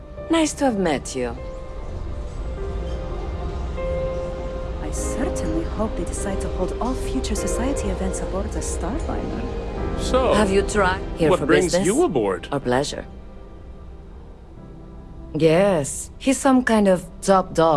Nice to have met you. I I certainly hope they decide to hold all future society events aboard the Starliner. So, have you tried here what for brings business? you aboard? Or pleasure? Yes, he's some kind of top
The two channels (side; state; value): both; identical; correlation 1.00